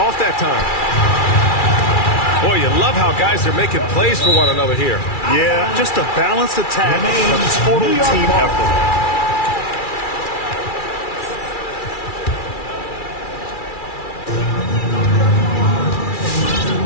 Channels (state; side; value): late; right; 2.3 ms